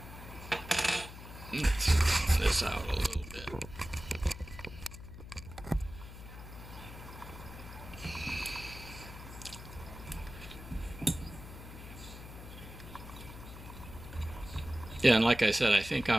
Yeah, and like I said, I think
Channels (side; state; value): left; noise; hum, 13 dB below the sound